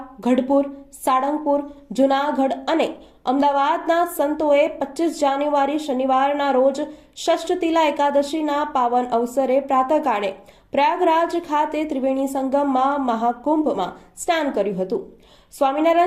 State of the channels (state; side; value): identical; both; correlation 1.00